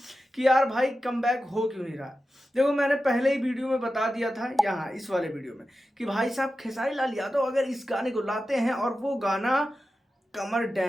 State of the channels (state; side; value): normal; both; correlation 0.92